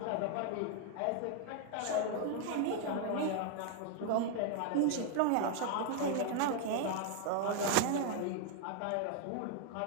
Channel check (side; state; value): both; different; correlation 0.00